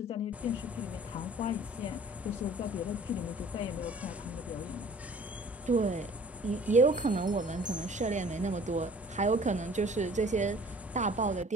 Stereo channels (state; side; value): normal; both; correlation 0.50